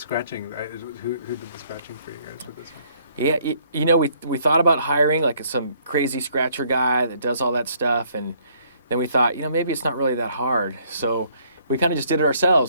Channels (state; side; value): inverted; both; correlation -0.65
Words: who did the scratching for you guys with this one? Yeah, you know, we thought about hiring like some crazy scratcher guy that does all that stuff, and then we thought, you know, maybe it's not really that hard. So we kind of just did it